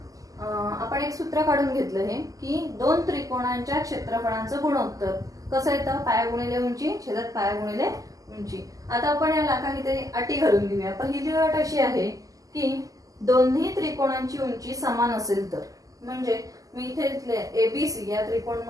आपण एक सूत्र काढून घेतलं हे की दोन त्रिकोणांच्या क्षेत्रफळांचं गुणोत्तर कसं येतं, पाया गुणिले उंची छेदात पाया गुणिले उंची. आता आपण याला काहीतरी अटी घालून घेऊया. पहिली अट अशी आहे की दोन्ही त्रिकोणांची उंची समान असेल तर, म्हणजे मी इथे घेतले ABC या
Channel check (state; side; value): late; left; 0.17 ms